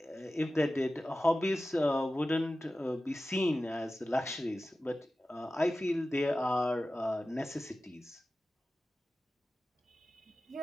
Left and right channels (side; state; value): both; normal; correlation 0.95